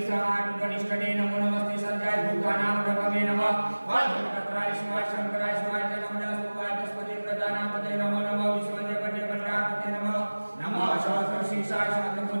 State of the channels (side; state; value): both; inverted; correlation -1.00